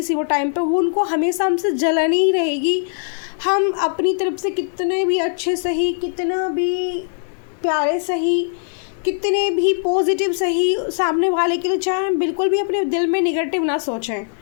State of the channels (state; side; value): silent; right; digital silence